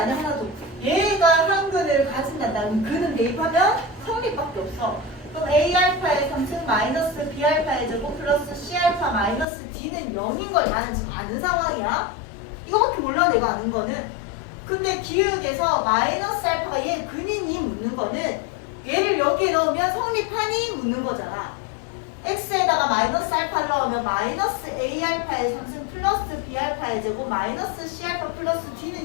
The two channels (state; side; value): drops out; right; at 9.5 s